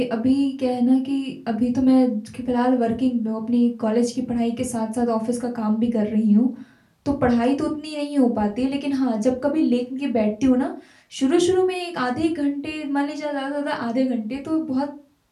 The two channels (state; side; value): identical; both; correlation 1.00